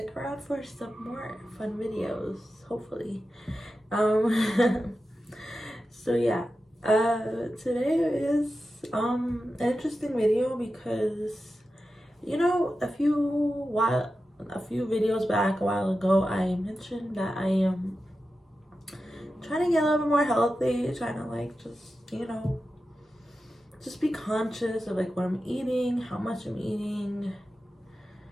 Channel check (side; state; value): both; normal; correlation 0.92